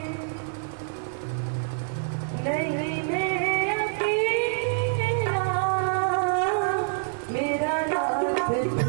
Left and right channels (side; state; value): left; silent; digital silence